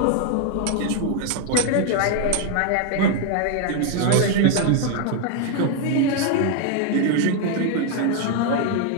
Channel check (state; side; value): different; both; correlation 0.00